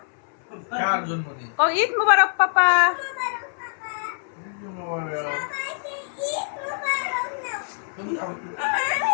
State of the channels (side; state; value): right; silent; 60 dB below the other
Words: কার জন্মদিন? ও ঈদ মুবারক পাপা।